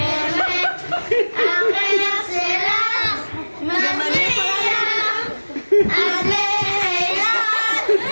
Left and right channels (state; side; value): inverted; both; correlation -1.00